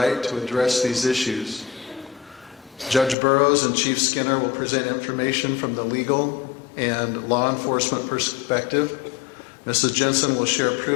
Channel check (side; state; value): right; drops out; at 3.2 s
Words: to address these issues. Judge Burrowes and Chief Skinner will present information from the legal and law enforcement perspective. Mrs. Jensen will share